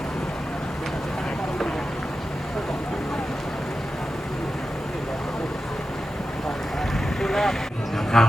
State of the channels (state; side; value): normal; both; correlation 0.92